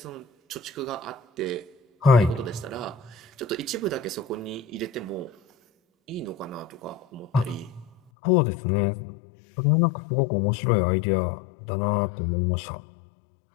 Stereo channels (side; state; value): right; drops out; at 8.0 s